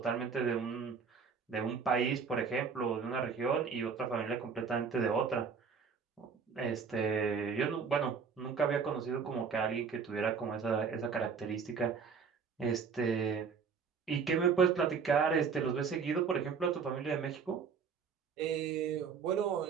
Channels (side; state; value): left; quieter; 5.9 dB